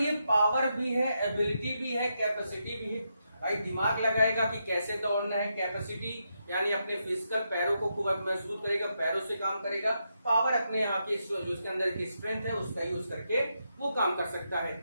पावर भी है, एबिलिटी भी है, कैपेसिटी भी है। भाई दिमाग लगाएगा कि कैसे दौड़ना है। कैपेसिटी यानी अपने फिजिकल पैरों को खूब मजबूत करेगा, पैरों से काम करेगा। पावर अपने यहाँ की जो उसके अंदर की स्ट्रेंथ है उसका यूज करके वो काम कर सकता है।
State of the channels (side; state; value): both; inverted; correlation -0.83